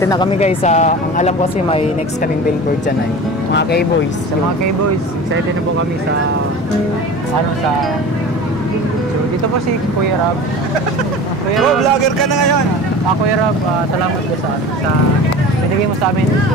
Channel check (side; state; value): both; normal; correlation 0.36